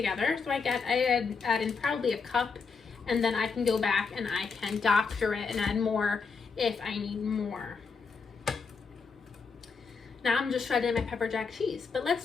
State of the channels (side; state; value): right; quieter; 5.1 dB